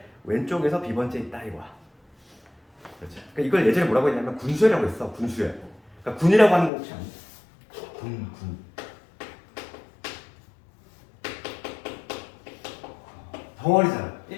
왼쪽에서 B번째 있다 이거야. 그렇죠. 그러니까 이걸 예전에 뭐라고 했냐면 군수열이라고 했어. 군수열. 그러니까 군이라고 하는 거 혹시 아니야? 군. 덩어리잖아.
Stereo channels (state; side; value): drops out; right; at 6.7 s